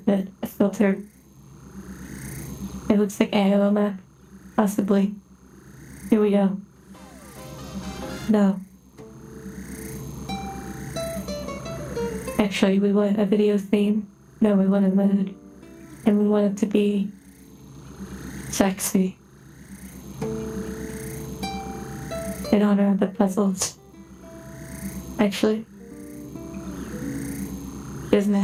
a filter. It looks like Aoma, possibly. Here we go. No. Actually, we want a video theme. No, we want a mood. And we want it to be sexy. In honor of the puzzles. Actually, doesn't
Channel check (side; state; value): both; identical; correlation 1.00